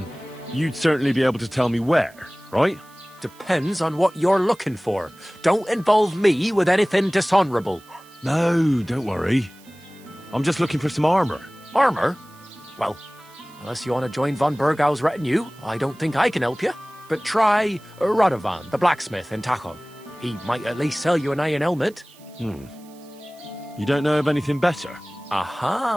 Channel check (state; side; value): noise; right; hiss, 26 dB below the sound